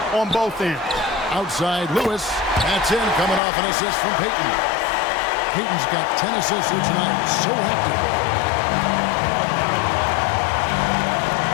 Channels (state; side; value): drops out; right; at 3.4 s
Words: on both ends. Outside Lewis, that's in, coming off an assist from Payton. Payton's got 10 assists here tonight, so active.